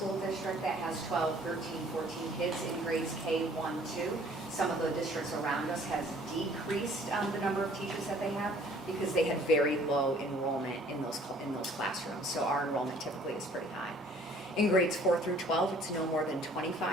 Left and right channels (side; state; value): both; normal; correlation 0.56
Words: district that has 12, 13, 14 kids in grades K, 1, 2. Some of the districts around us has decreased the number of teachers that they have because they had very low enrollment in those classrooms. So our enrollment typically is pretty high. In grades 4 through 12, it's no more than